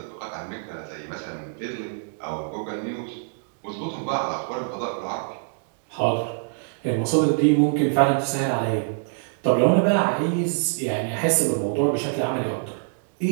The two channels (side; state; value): left; silent; digital silence